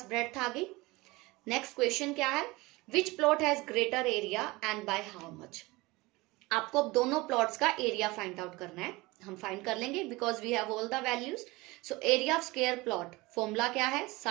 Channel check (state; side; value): quieter; left; 22.1 dB